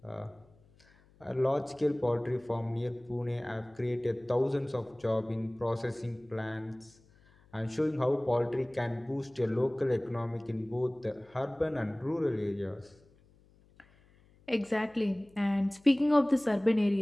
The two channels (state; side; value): noise; left; hum, 29 dB below the sound